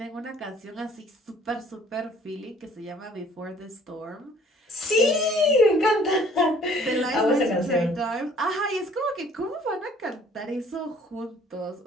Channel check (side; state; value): both; normal; correlation 0.56